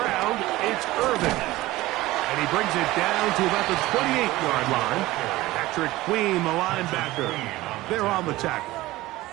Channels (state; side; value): quieter; left; 18.0 dB